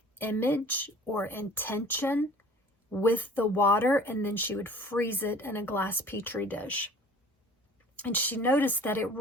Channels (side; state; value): both; normal; correlation 0.47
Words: image or intention with the water, and then she would freeze it in a glass petri dish. And she noticed that it